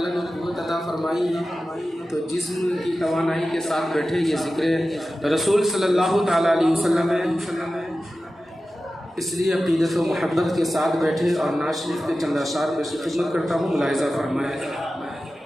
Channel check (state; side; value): normal; both; correlation 0.94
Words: نے قوت عطا فرمائی ہے تو جسم کی توانائی کے ساتھ بیٹھے، یہ ذکر رسول صلی اللہ تعالیٰ علیہ وسلم ہے، اس لیے عقیدت و محبت کے ساتھ بیٹھے اور ناز شریف کے چند اشعار میں سے خدمت کرتا ہوں، ملاحظہ فرمائیں۔